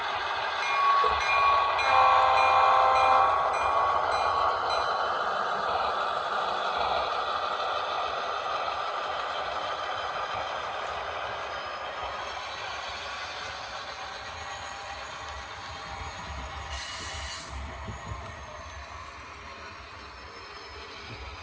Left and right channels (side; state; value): both; identical; correlation 1.00